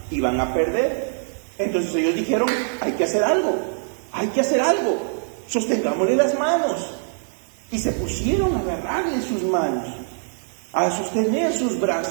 iban a perder. Entonces ellos dijeron, hay que hacer algo, sostengámosle las manos. Y se pusieron a agarrarle sus manos, a sostener sus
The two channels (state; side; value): silent; left; 55 dB below the other